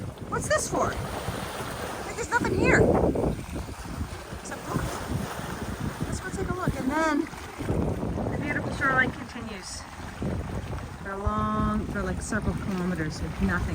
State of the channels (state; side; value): identical; both; correlation 1.00